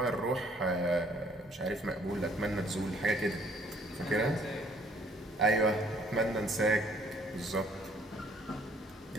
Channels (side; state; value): both; normal; correlation 0.62